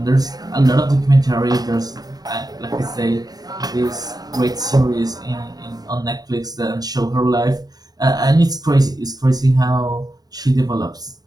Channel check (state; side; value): late; left; 0.19 ms